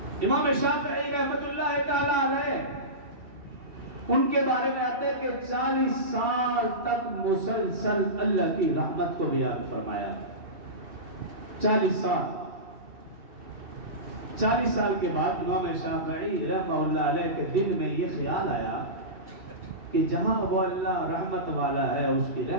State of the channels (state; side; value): late; left; 2.7 ms